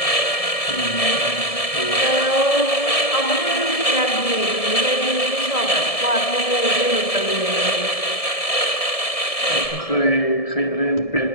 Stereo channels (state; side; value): late; right; 1.7 ms